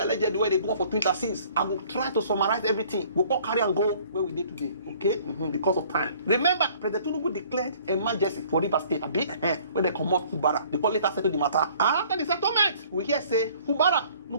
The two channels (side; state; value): both; inverted; correlation -0.55